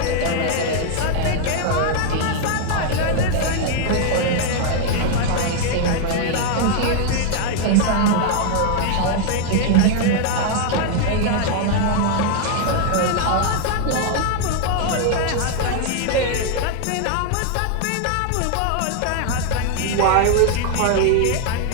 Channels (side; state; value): both; different; correlation 0.00